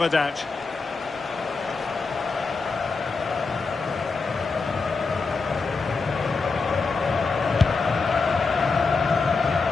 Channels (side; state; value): right; quieter; 4.3 dB